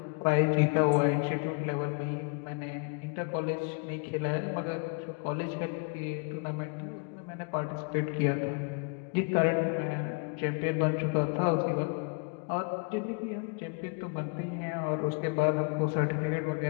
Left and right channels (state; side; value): quieter; right; 36.5 dB